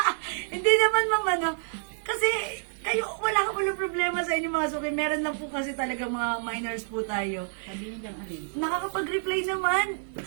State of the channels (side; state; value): left; silent; digital silence